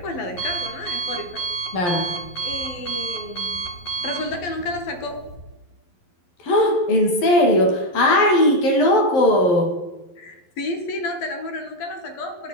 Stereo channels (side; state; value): right; late; 11 ms